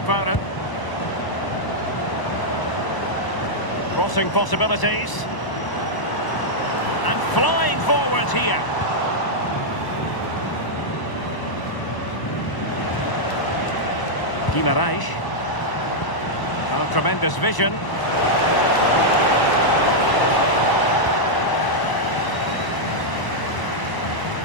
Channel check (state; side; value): late; right; 1.0 ms